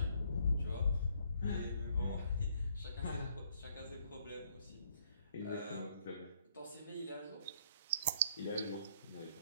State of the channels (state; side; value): inverted; both; correlation -0.67